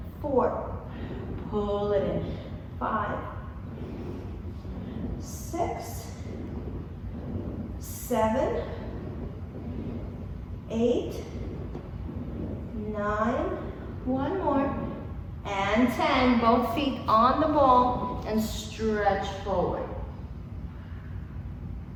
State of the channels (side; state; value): both; identical; correlation 1.00